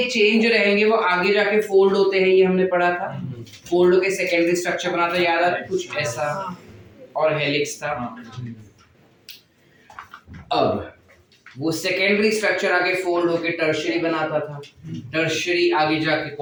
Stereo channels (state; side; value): identical; both; correlation 1.00